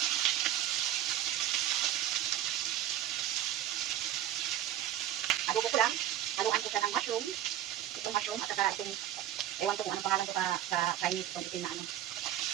Adobo ko lang. Haluan ko siya ng mushroom. Itong mushroom at saka itong, ewan ko kung anong pangalan ko sa Chinese, itong itim na ano.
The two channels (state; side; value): quieter; left; 12.0 dB